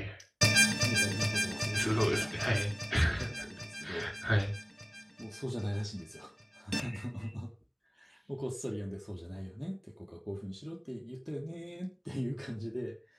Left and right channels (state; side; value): identical; both; correlation 1.00